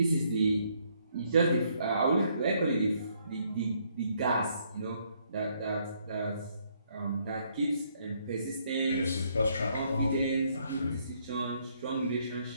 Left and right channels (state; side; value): inverted; both; correlation -0.70